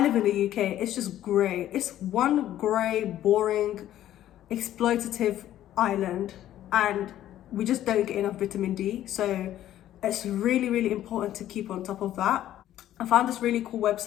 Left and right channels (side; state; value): right; quieter; 12.6 dB